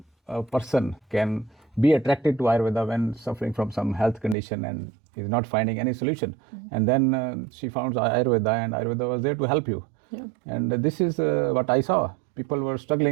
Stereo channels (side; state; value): left; drops out; at 4.4 s